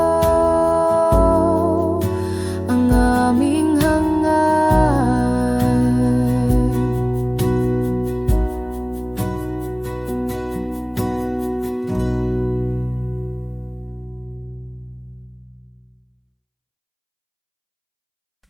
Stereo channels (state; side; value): identical; both; correlation 1.00